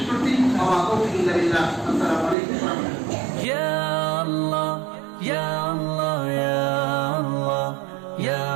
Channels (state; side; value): drops out; left; at 2.4 s